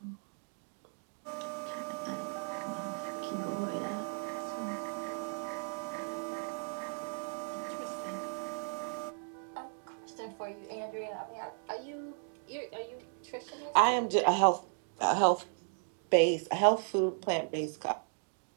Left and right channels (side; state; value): left; silent; digital silence